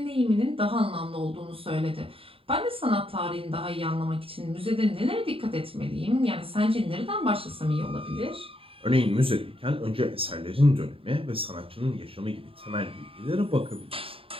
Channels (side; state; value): left; late; 0.27 ms